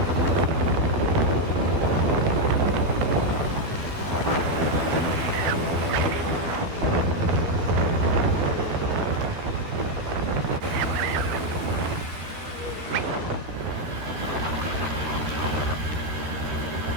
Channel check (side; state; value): left; late; 13 ms